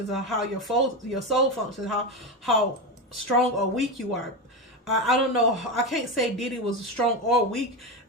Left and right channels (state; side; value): normal; both; correlation 0.16